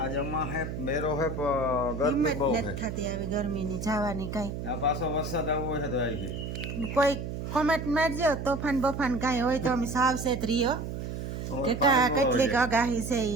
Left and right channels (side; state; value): right; noise; hum, 6 dB below the sound